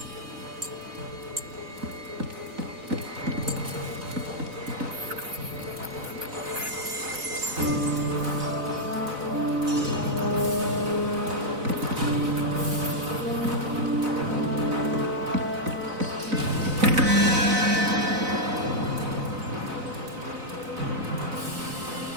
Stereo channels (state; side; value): late; left; 4.0 ms